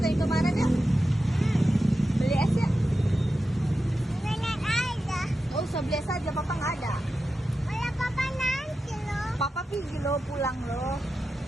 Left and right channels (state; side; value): normal; both; correlation 0.91